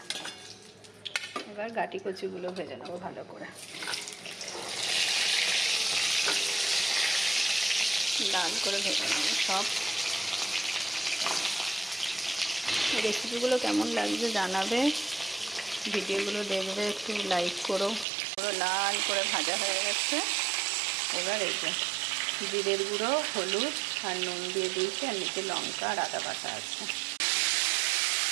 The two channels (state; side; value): drops out; left; at 18.1 s